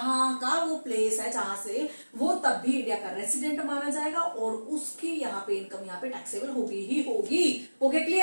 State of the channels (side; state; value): both; inverted; correlation -1.00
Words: का वो प्लेस है जहां से वो, तब भी इंडिया का रेसिडेंट माना जाएगा और उसकी यहाँ पे इनकम यहाँ पे टैक्सेबल होगी ही होगी। Okay